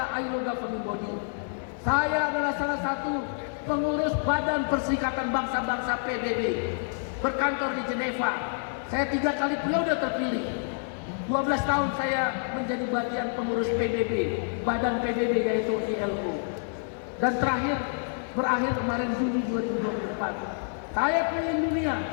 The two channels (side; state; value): right; silent; digital silence